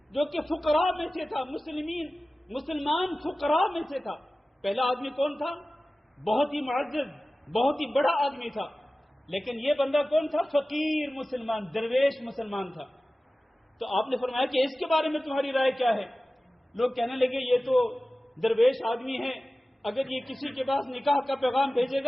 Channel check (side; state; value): both; normal; correlation 0.96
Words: جو کہ فقراء میں سے تھا، مسلمان فقراء میں سے تھا۔ پہلا آدمی کون تھا؟ بہت ہی معزز، بہت ہی بڑا آدمی تھا، لیکن یہ بندہ کون تھا؟ فقیر مسلمان، درویش مسلمان تھا۔ تو آپ نے فرمایا کہ اس کے بارے میں تمہاری رائے کیا ہے؟ لوگ کہنے لگے یہ تو درویش آدمی ہے، اگر یہ کسی کے پاس نکاح کا پیغام بھیجے